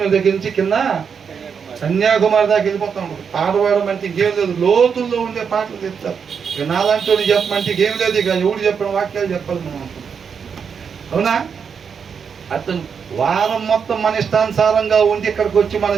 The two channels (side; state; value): left; quieter; 6.6 dB